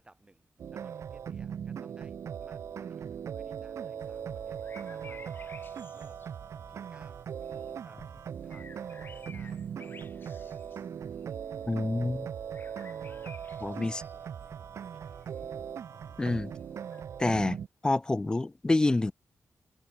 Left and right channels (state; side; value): normal; both; correlation 0.87